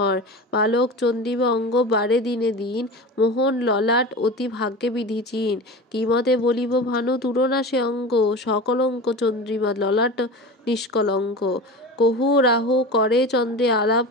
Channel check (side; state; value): both; normal; correlation 0.31